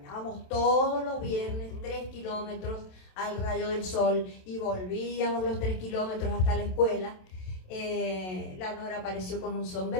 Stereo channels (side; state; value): right; late; 27 ms